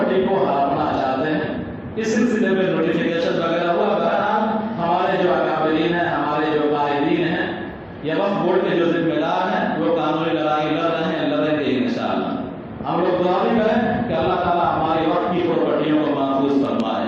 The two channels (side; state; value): both; identical; correlation 1.00